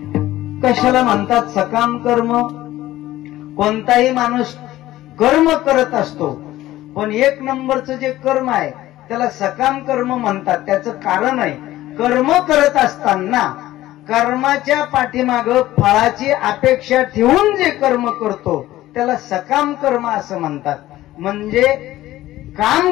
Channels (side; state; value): right; quieter; 15.4 dB